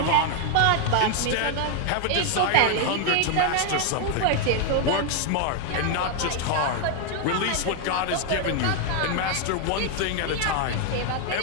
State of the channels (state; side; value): different; both; correlation 0.01